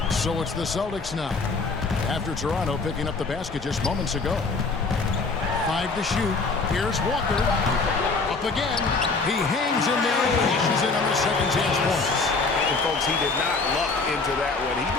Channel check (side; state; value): right; quieter; 4.0 dB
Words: So it's the Celtics now. After Toronto picking up the basket just moments ago. 5 to shoot. Here's Walker. Up again. He hangs in there and cashes in on the second chance points. And folks, he did not luck into that one. He